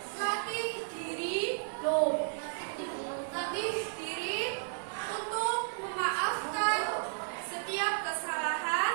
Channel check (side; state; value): left; silent; 55 dB below the other